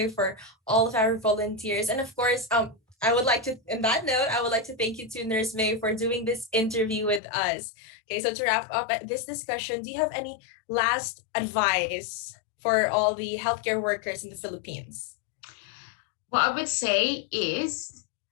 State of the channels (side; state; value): right; drops out; at 7.2 s